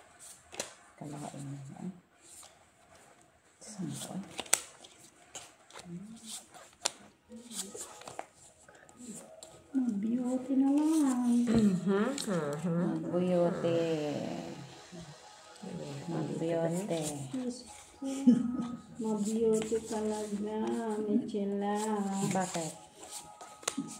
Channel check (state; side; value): identical; both; correlation 1.00